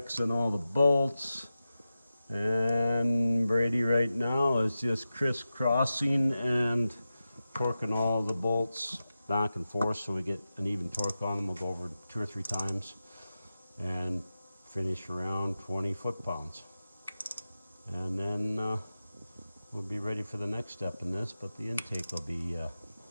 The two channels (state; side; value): inverted; both; correlation -0.93